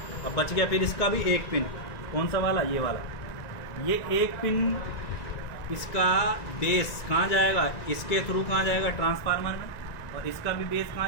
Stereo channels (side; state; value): right; late; 1.9 ms